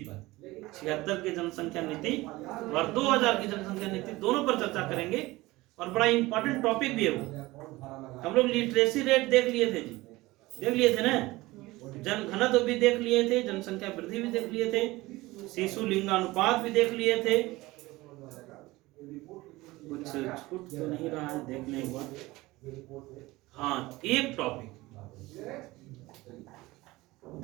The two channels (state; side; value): quieter; left; 19.9 dB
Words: 76 की जनसंख्या नीति और 2000 की जनसंख्या नीति, दोनों पर चर्चा करेंगे। और बड़ा इंपॉर्टेंट टॉपिक भी है वो। हम लोग लिटरेसी रेट देख लिए थे जी, देख लिए थे ना, जनघनत्व भी देख लिए थे, जनसंख्या वृद्धि भी देख लिए थे, शिशु लिंगानुपात भी देख लिए थे। कुछ छूट तो नहीं रहा है, देख लें एक बार। हाँ, एक टॉपिक,